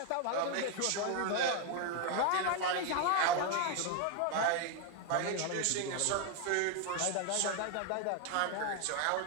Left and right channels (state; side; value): different; both; correlation 0.01